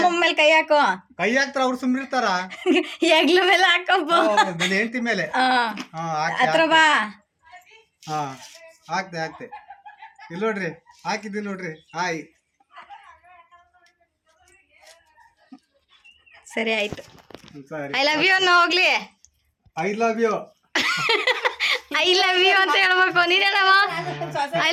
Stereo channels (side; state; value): both; identical; correlation 1.00